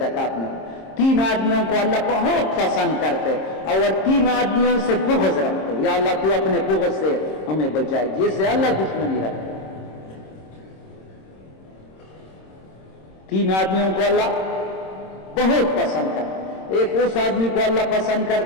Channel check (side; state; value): right; late; 26 ms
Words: میں. 3 آدمیوں کو اللہ بہت پسند کرتے اور 3 آدمیوں سے بغض رکھتے. یا اللہ تو اپنے بغض سے ہمیں بچائے، جس سے اللہ دشمنی رکھتے. 3 آدمیوں کو اللہ بہت پسند کرتا. ایک اس آدمی کو اللہ پسند